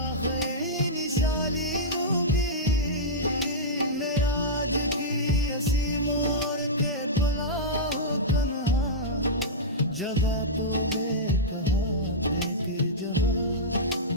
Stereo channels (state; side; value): normal; both; correlation -0.12